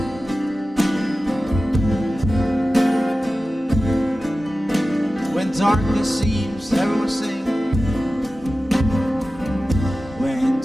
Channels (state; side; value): normal; both; correlation 0.95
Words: darkness seems, everyone sing. When